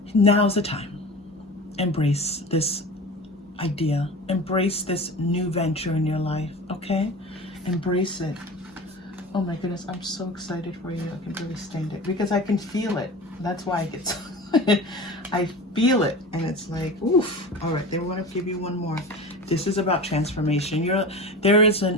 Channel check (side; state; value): both; normal; correlation 0.33